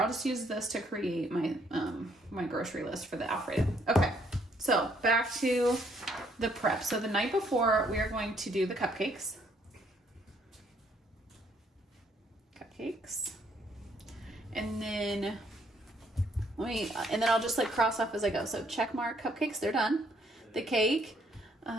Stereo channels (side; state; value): both; normal; correlation 0.68